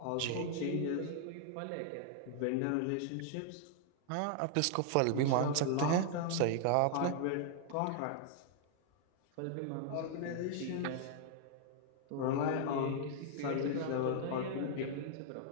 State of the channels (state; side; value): different; both; correlation -0.01